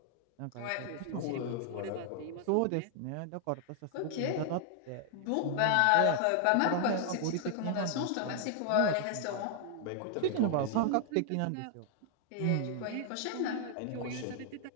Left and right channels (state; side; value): different; both; correlation 0.00